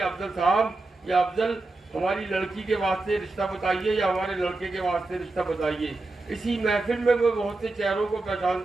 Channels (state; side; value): quieter; left; 3.2 dB